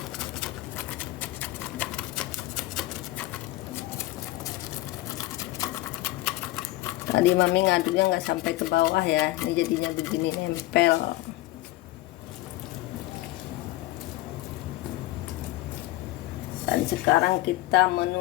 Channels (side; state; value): right; quieter; 17.0 dB